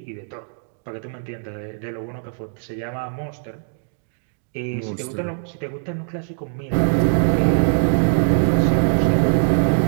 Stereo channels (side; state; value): left; silent; digital silence